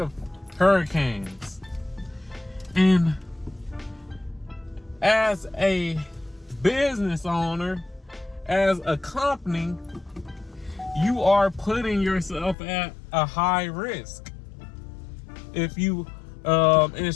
of hurricanes. And as a business owner, as a company, you are putting yourself at a high risk if you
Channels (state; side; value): drops out; right; at 12.6 s